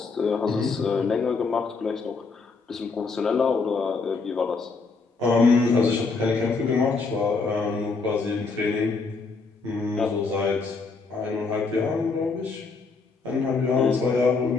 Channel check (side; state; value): right; quieter; 4.3 dB